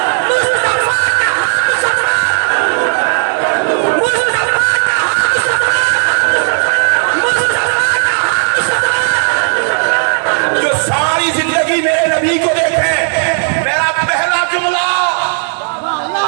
میرے نبی کو دیکھیں. میرا پہلا جملہ,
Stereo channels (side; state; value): left; silent; digital silence